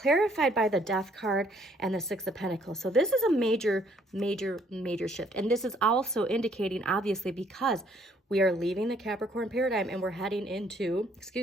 by the Death card and the Six of Pentacles. So this is a major, major, major shift. And this is also indicating, obviously, because we are leaving the Capricorn paradigm and we're heading into,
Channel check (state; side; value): normal; both; correlation 0.64